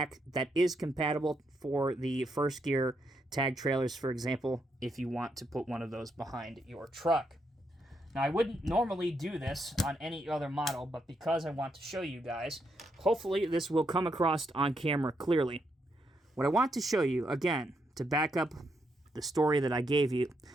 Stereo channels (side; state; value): both; normal; correlation 0.79